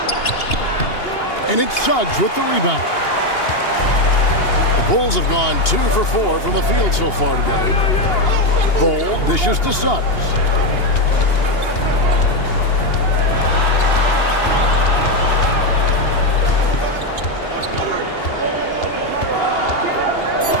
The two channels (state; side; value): late; right; 2.8 ms